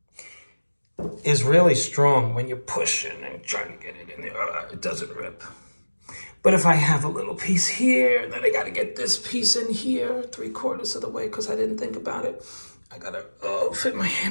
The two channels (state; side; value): inverted; both; correlation -1.00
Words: is really strong when you're pushing and trying to get it in there. It doesn't rip. But if I have a little piece here, then I got to get this piece in here 3/4 of the way because I didn't think about it. I got to fit my